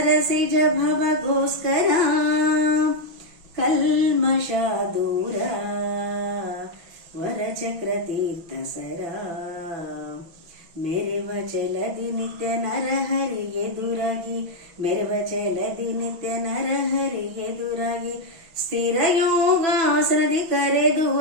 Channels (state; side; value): late; left; 6.1 ms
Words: ಭವಗೋಸ್ಕರ ಕಲ್ಮಷ ದೂರ, ವರಚಕ್ರ ತೀರ್ಥ ಸರ. ಮೆರೆವ ಚಲದಿ ನಿತ್ಯ ನರಹರಿ ಎದುರಾಗಿ, ಮೆರೆವ ಚಲದಿ ನಿತ್ಯ ನರಹರಿ ಎದುರಾಗಿ, ಸ್ಥಿರ ಯೋಗಾಸನದಿ ಕರೆದು